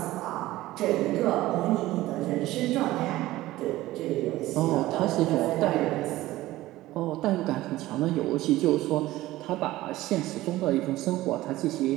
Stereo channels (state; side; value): quieter; left; 16.8 dB